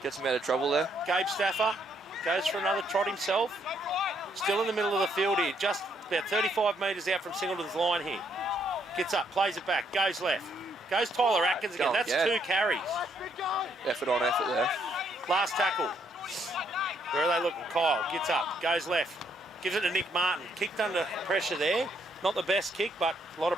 Gets him out of trouble there. Gabe Staffer goes for another trot himself. Still in the middle of the field here, just about 35 metres out from Singleton's line here. Gets up, plays it back, goes left. Goes Tyler Atkins again. That's two carries. Effort on effort there. Last tackle. Where are they looking? Kyle gets up, goes left. Gives it to Nick Martin. Kicked under pressure there. Not the best kick, but a lot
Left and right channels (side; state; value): both; normal; correlation 0.72